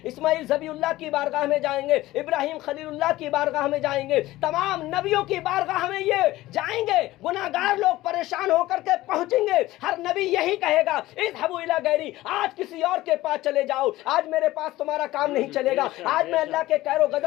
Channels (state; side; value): quieter; right; 17.0 dB